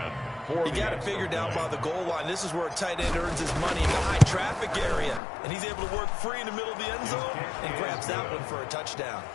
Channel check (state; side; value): drops out; right; at 5.2 s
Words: got it figured out by the goal line. This is where a tight end earns his money in the high traffic area. And he's able to work free in the middle of the end zone and grabs that one for a touchdown.